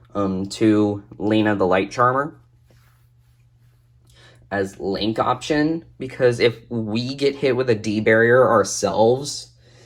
2 Lena the Light Charmer as link option, because if we get hit with a D barrier ourselves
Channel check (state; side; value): identical; both; correlation 1.00